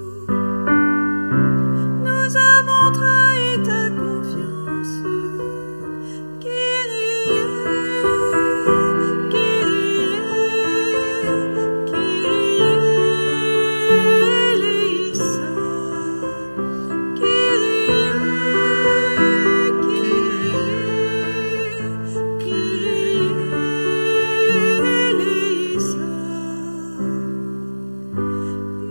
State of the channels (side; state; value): both; inverted; correlation -1.00